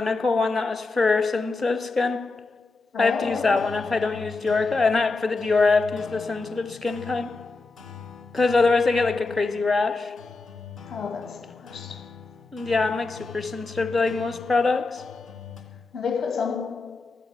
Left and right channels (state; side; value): quieter; right; 3.7 dB